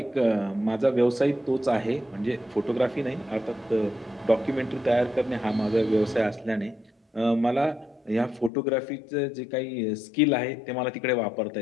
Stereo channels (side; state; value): right; drops out; at 8.5 s